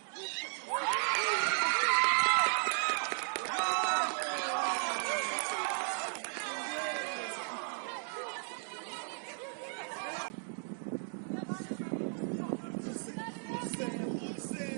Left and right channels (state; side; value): silent; left; 54 dB below the other